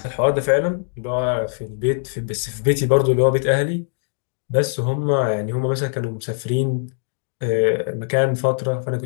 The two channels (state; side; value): silent; right; digital silence